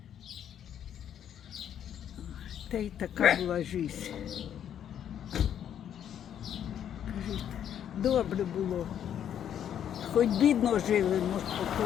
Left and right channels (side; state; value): right; quieter; 9.6 dB